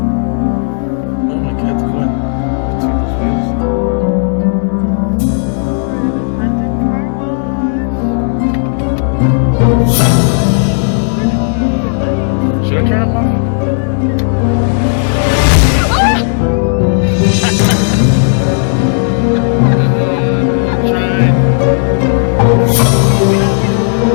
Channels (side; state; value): right; silent; digital silence